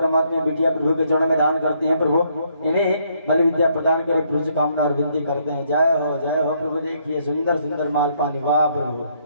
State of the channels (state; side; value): inverted; both; correlation -0.71